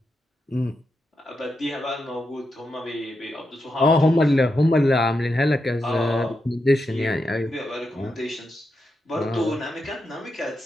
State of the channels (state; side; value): normal; both; correlation 0.86